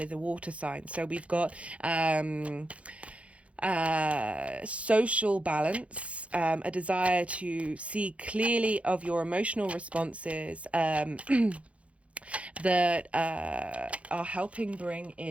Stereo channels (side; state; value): left; late; 0.063 ms